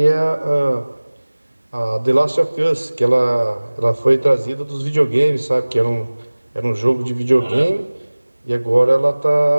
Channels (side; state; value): both; inverted; correlation -1.00